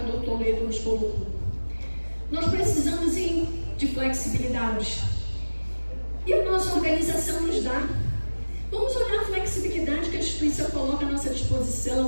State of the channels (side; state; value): both; inverted; correlation -1.00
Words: Toledo nos colocou. Nós precisamos de flexibilidade. E a nossa organização nos dá. Vamos olhar a flexibilidade que a instituição coloca à nossa